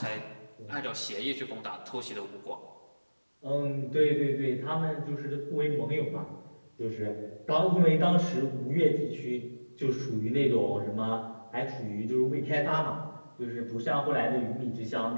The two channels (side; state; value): both; inverted; correlation -1.00